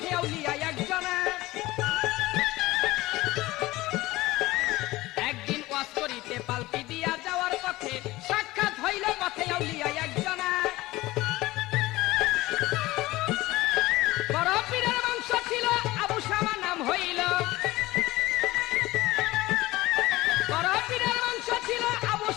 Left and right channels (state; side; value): quieter; right; 18.8 dB